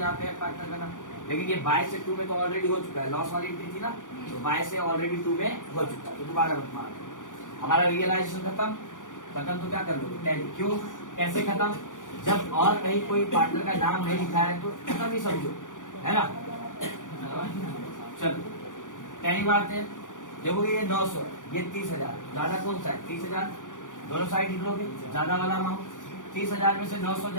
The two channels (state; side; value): late; right; 0.87 ms